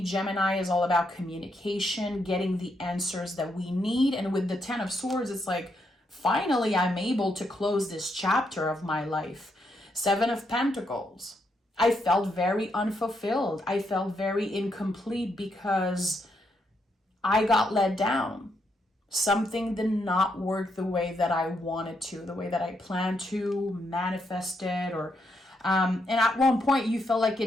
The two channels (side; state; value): both; normal; correlation 0.79